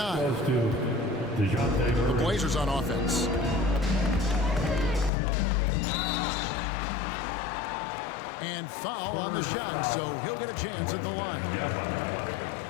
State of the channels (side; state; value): right; drops out; at 5.1 s